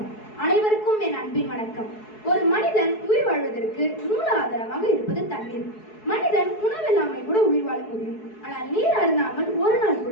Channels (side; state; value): right; late; 4.7 ms